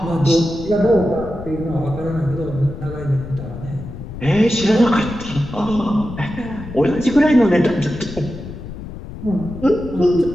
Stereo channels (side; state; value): left; noise; rumble, 11 dB below the sound